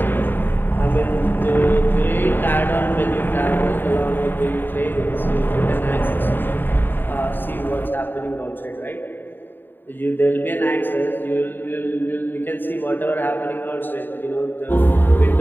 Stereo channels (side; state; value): right; late; 0.094 ms